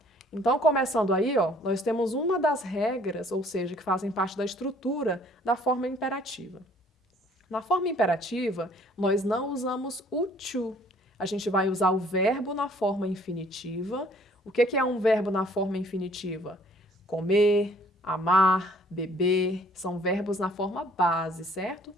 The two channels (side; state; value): both; normal; correlation 0.58